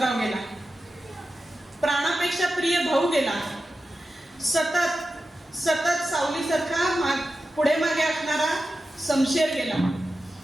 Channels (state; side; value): normal; both; correlation 0.92